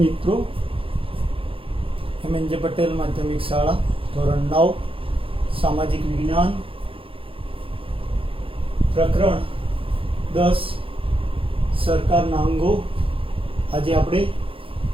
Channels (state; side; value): late; left; 0.26 ms